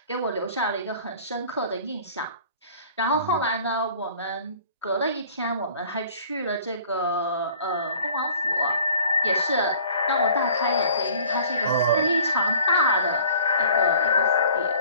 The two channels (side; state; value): both; inverted; correlation -0.51